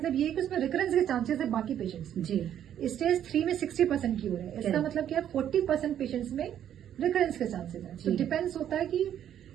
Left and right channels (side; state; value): left; quieter; 10.3 dB